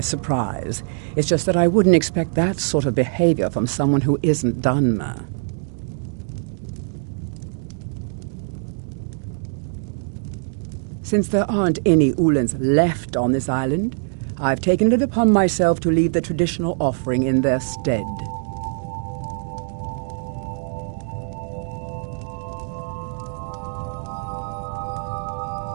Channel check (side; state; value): left; silent; digital silence